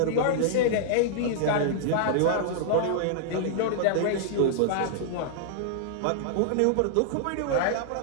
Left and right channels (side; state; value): both; different; correlation -0.01